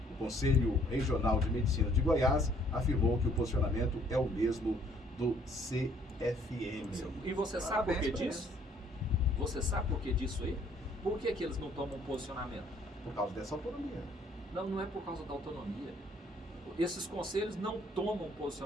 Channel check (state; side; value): normal; both; correlation 0.62